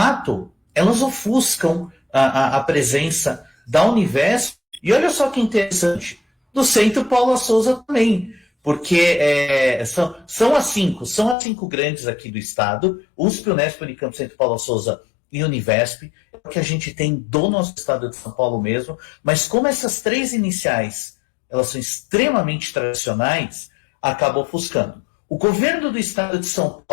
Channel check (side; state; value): right; drops out; at 11.4 s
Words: elas ofuscam a presença da Univesp. E olha só que interessante, do Centro Paula Souza também, porque são as cinco grandes aqui do estado, USP, Unesp, Unicamp, Centro Paula Souza e Univesp, é o que a gente tem do nosso estado de São Paulo mesmo, mas como essas três iniciais, elas são extremamente tradicionais, acaba ofuscando. O governo do estado de São